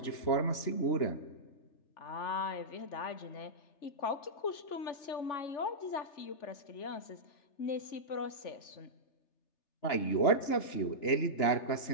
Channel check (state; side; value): late; right; 3.3 ms